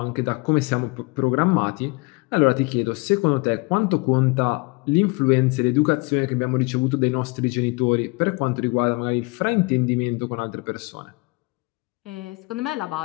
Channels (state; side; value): quieter; right; 27.9 dB